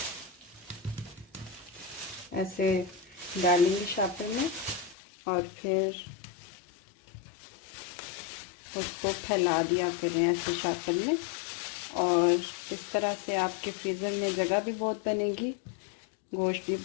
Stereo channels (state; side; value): drops out; right; at 5.0 s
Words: ऐसे डालेंगे शापर में और फिर उसको फैला दिया करें ऐसे शापर में। और इस तरह से आपके फ्रीज़र में जगह भी बहुत बनेगी, गोश्त भी